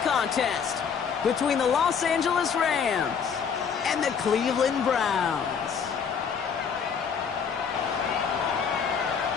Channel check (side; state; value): right; quieter; 6.7 dB